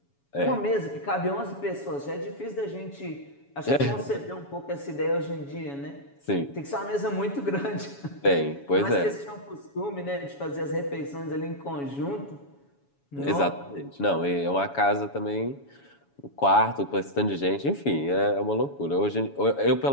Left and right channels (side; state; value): right; late; 7.1 ms